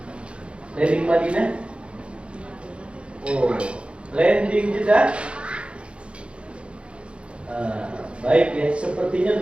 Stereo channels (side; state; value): left; late; 0.058 ms